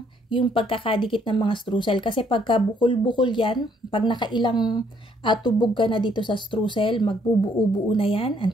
yung pagkakadikit ng mga streusel. Kasi pagka bukol-bukol yan, pag nakailang tubog ka na dito sa streusel, magbubuo-buo na yan. Ang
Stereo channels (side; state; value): both; normal; correlation 0.67